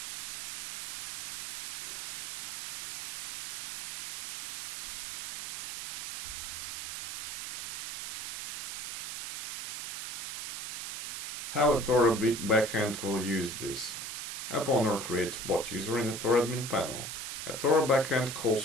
How Ethora backend will use this. App owner creates bot user in Ethora admin panel. Ethora backend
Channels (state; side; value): noise; right; hiss, 4 dB below the sound